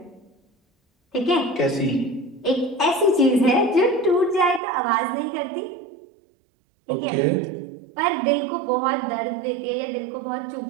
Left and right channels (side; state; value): left; drops out; at 4.6 s